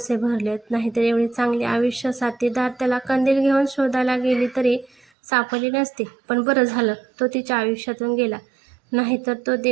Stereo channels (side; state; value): left; drops out; at 5.1 s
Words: भरलेत, नाहीतर एवढी चांगली आयुष्य साथीदार त्याला कंदील घेऊन शोधायला गेली तरी सापडली नसती. पण बरं झालं तो तिच्या आयुष्यातून गेला, नाहीतर तो